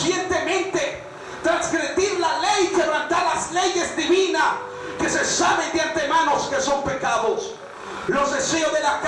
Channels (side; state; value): both; identical; correlation 1.00